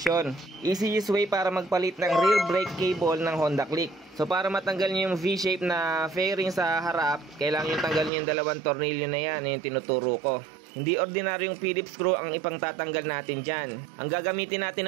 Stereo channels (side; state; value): left; drops out; at 8.1 s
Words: Easiest way para magpalit ng rear brake cable ng Honda Click. So para matanggal nyo yung V-shape na fairing sa harap, kailangan nyo tanggal nyo yung dalawang tornilyo na yan, yung tinuturo ko. Hindi ordinaryong Phillips screw ang ipang tatanggal natin dyan. Ang gagamitin